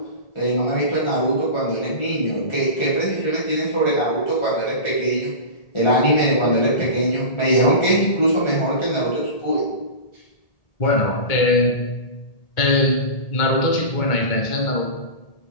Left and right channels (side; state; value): right; late; 1.8 ms